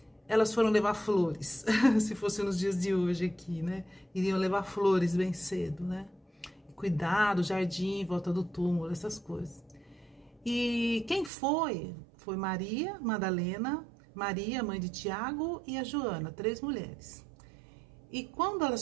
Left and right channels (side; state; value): left; drops out; at 11.3 s